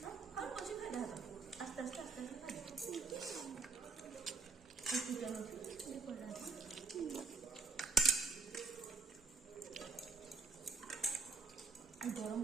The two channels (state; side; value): quieter; left; 4.1 dB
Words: ଆଉ ପଛେ ଖାଇଦା ହାତ ଆସ୍ତେ ଆସ୍ତେ ଆସ୍ତେ ଆସ୍ତେ ଖାଇଦା ଚିକେନ ଅଛି ପଡ଼ିଲା ଗରମ